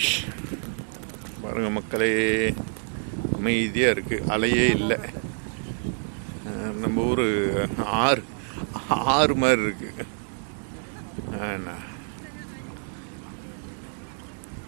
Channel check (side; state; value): left; silent; 60 dB below the other